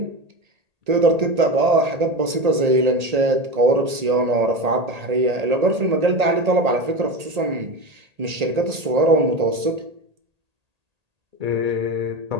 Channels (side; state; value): left; late; 1.8 ms